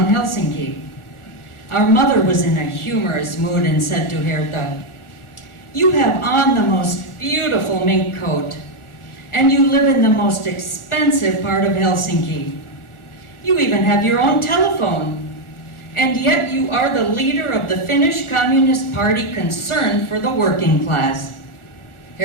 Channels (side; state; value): right; late; 1.4 ms